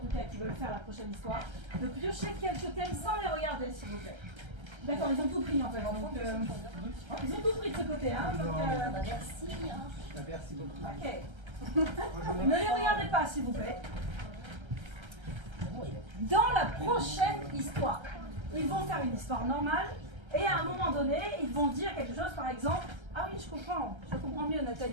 cas qui veulent faire la prochaine histoire, de piocher quelques thèmes sans les regarder, s'il vous plaît. D'accord, ils ont tout pris en fait. Donc, ils ont tout pris de ce côté. Hein, donc, Merci. Merci beaucoup. ok. Ne les regardez pas, s'il vous plaît. Dans la prochaine histoire, ils vont faire une histoire normale et à un moment donné, ils vont dire quelque chose, par exemple. Ah oui, je comprends mieux,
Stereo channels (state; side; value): late; left; 1.3 ms